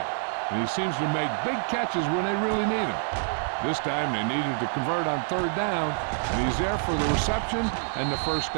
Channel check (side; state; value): left; silent; 60 dB below the other